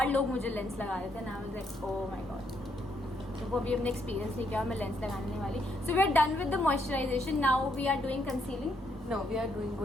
लोग मुझे लेंस लगा रहे थे ना. आई was like oh my God. तो वो भी हमने एक्सपीरियंस नहीं किया. मैं लेंस लगाने वाली. So we are done with the moisturisation. Now we are doing concealing. No, we are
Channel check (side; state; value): both; normal; correlation 0.75